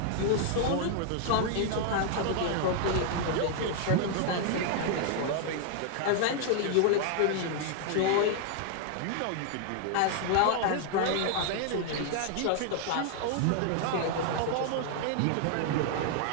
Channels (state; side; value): different; both; correlation 0.00